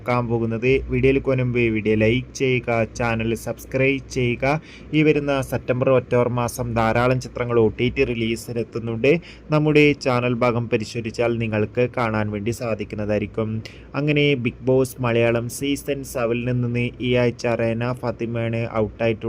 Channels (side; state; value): both; identical; correlation 1.00